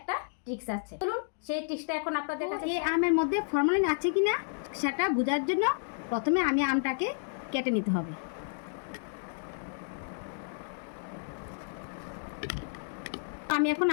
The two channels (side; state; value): right; silent; digital silence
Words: ট্রিক্স আছে। চলুন সেই ট্রিক্সটা এখন আপনাদের কাছে। এই আমের মধ্যে ফরমালিন আছে কিনা সেটা বোঝার জন্য প্রথমে আমি আমটাকে কেটে নিতে হবে। আমি এখন